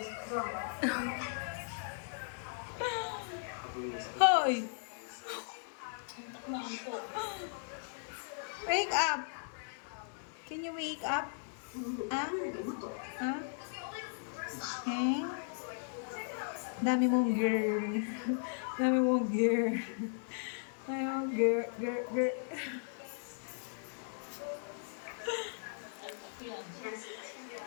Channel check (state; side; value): silent; right; digital silence